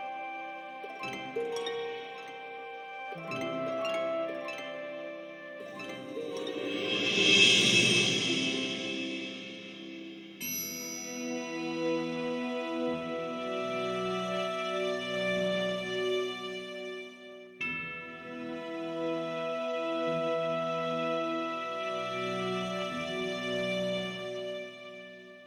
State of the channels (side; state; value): both; identical; correlation 1.00